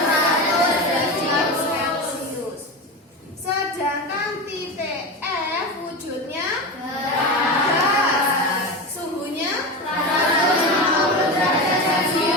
derajat Celcius. Sedangkan titik F wujudnya gas, suhunya 150 derajat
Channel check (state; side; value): normal; both; correlation 0.22